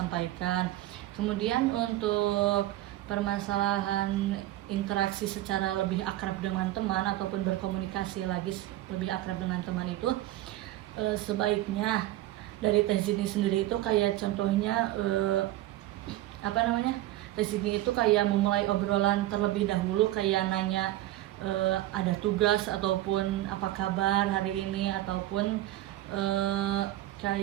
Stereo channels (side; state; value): left; quieter; 15.2 dB